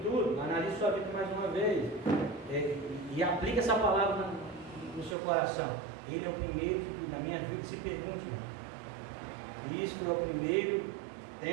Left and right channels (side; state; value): left; drops out; at 5.2 s